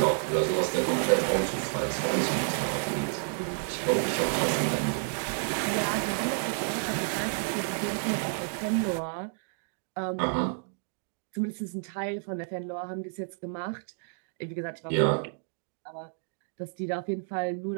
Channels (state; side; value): silent; left; digital silence